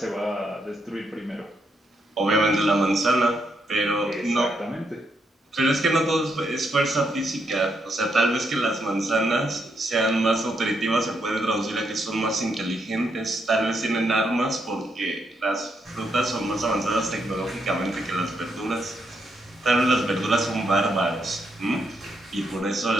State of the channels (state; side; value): normal; both; correlation 0.78